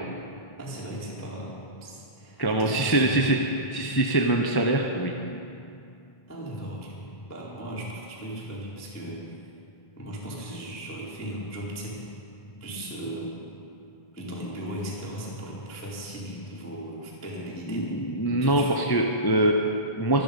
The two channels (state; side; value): late; right; 1.1 ms